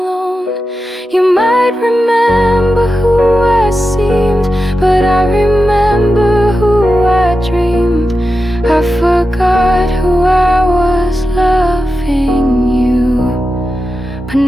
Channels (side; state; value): both; normal; correlation 0.91